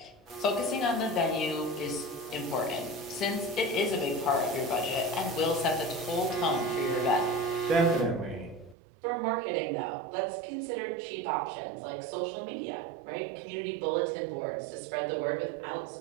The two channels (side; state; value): left; drops out; at 8.8 s